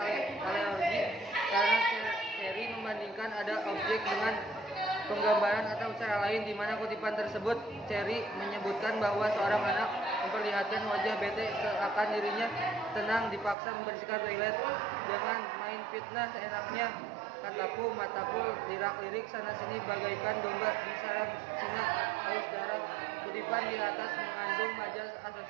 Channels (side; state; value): left; drops out; at 13.6 s